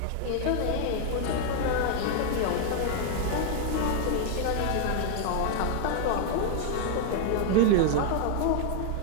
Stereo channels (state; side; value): different; both; correlation 0.00